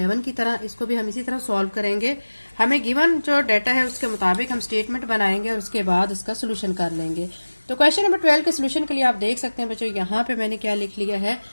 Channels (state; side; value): inverted; both; correlation -1.00